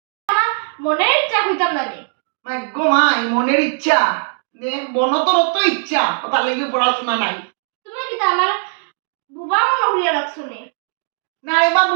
মনের ইচ্ছা হইতাম না রে মাই গো মাই মনের ইচ্ছা নে বনতর তো ইচ্ছা কথা লাগি পড়াশোনা নাই তুমি কি আমার বুবা মনে হইয়া রাখছো নি না এবার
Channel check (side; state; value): left; silent; 67 dB below the other